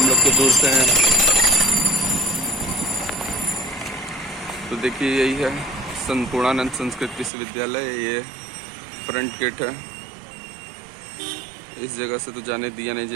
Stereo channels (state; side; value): drops out; left; at 7.3 s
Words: लोग तो दूर से हैं। तो देखिए यही है संपूर्णानंद संस्कृत विश्वविद्यालय। ये फ्रंट गेट है। इस जगह से तो जाने दिया नहीं